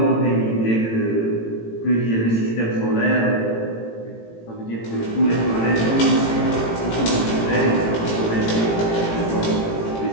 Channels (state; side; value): late; right; 18 ms